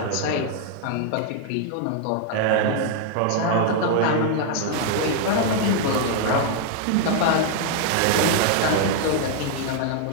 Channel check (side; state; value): both; different; correlation 0.00